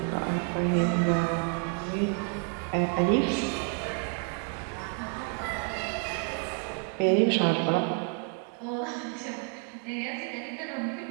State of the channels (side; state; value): left; quieter; 39.6 dB